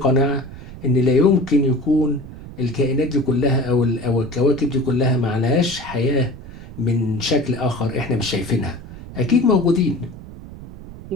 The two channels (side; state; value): right; noise; rumble, 14 dB below the sound